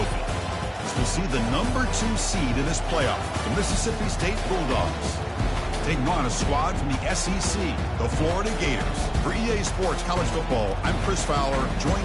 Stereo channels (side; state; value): both; identical; correlation 1.00